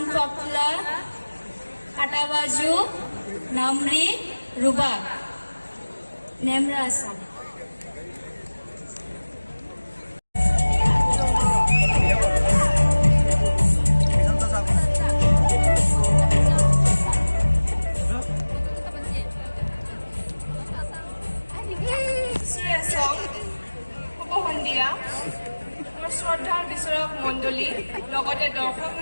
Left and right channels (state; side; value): inverted; both; correlation -1.00